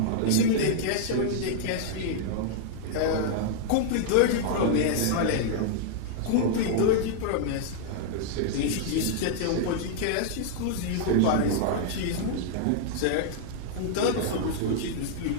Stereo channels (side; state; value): both; different; correlation -0.01